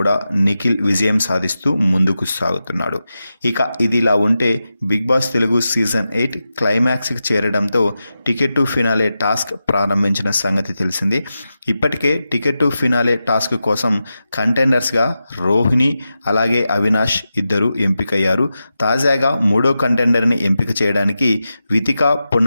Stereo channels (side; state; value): both; inverted; correlation -0.91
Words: నిఖిల్ విజయం సాధిస్తూ ముందుకు సాగుతున్నాడు. ఇక ఇది ఇలా ఉంటే బిగ్ బాస్ తెలుగు సీజన్ 8 క్లైమాక్స్కి చేరడంతో టికెట్ టు ఫినాలే టాస్క్ ప్రారంభించిన సంగతి తెలిసింది. ఇప్పటికే టికెట్ టు ఫినాలే టాస్క్ కోసం కంటెండర్స్గా రోహిణి అలాగే అవినాష్ ఇద్దరు ఎంపికయ్యారు. తాజాగా మూడో కంటెండర్ని ఎంపిక చేయడానికి వితికా